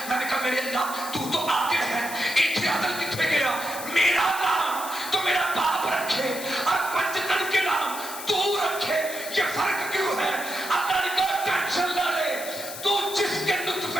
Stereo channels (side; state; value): left; noise; hiss, 10 dB below the sound